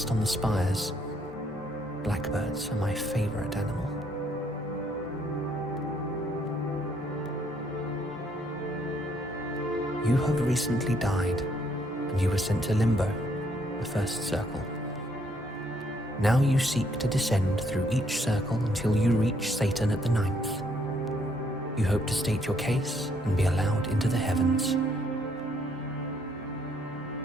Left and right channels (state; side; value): normal; both; correlation 0.69